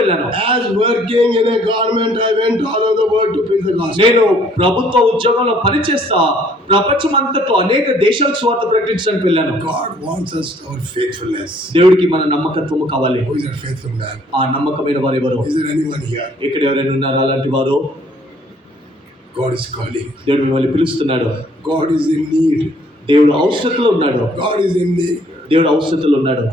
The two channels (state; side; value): normal; both; correlation 0.61